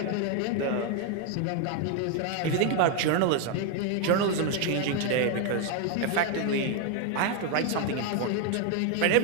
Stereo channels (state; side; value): different; both; correlation 0.01